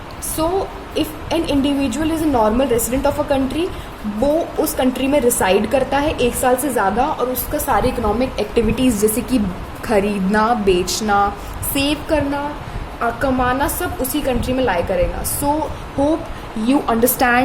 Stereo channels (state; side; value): identical; both; correlation 1.00